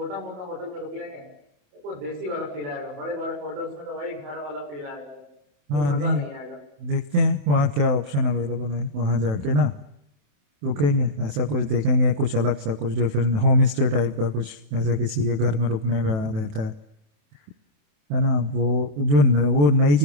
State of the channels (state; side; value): late; left; 28 ms